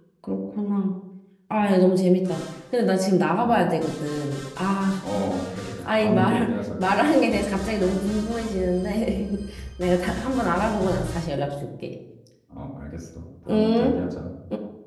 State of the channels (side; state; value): both; identical; correlation 1.00